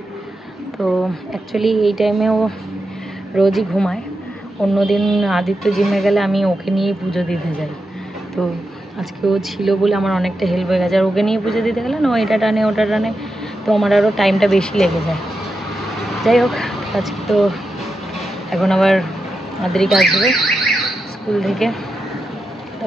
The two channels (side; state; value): both; normal; correlation 0.88